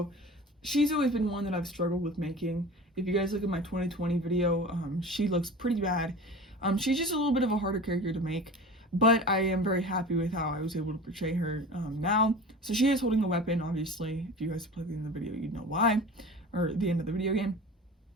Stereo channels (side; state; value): both; normal; correlation 0.36